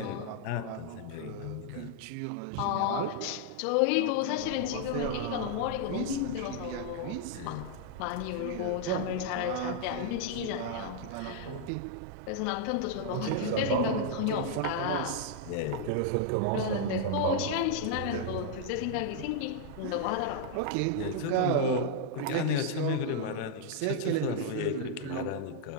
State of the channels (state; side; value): different; both; correlation -0.01